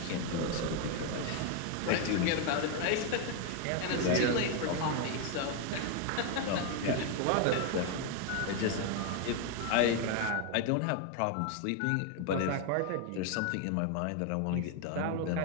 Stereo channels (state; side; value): different; both; correlation 0.01